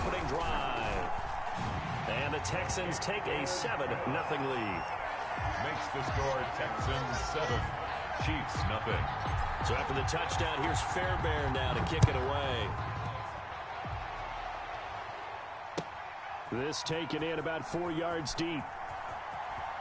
drive. And the Texans take a 7-0 lead. Makes the score Texans 7, Chiefs nothing. So after the touchdown, here's Fairbairn now to kick it away. This taken in about 4 yards deep.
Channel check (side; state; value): both; identical; correlation 1.00